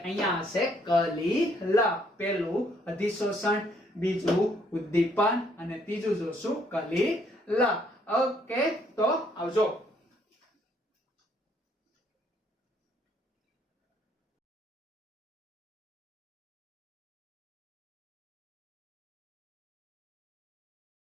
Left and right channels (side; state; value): both; normal; correlation 0.68